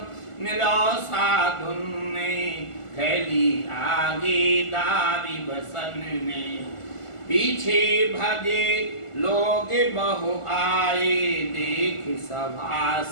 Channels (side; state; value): right; late; 1.4 ms